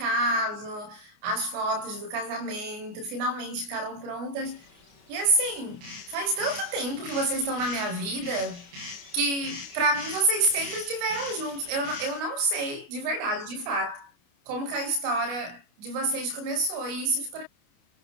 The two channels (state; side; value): late; left; 28 ms